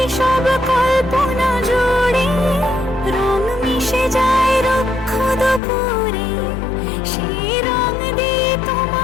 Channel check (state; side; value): drops out; right; at 5.6 s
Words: সব কল্পনা জুড়ে রং মিশে যায় রুক্ষ দুপুরে, সেই রং দিয়ে